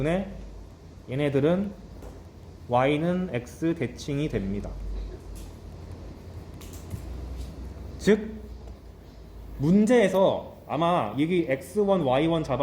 얘네들은 y는 x 대칭이 됩니다. 즉 문제에서 아마 여기 x1, y1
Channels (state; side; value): identical; both; correlation 1.00